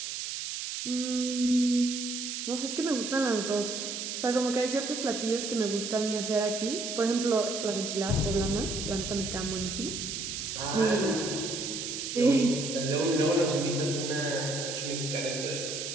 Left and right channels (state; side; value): noise; right; hiss, 5 dB below the sound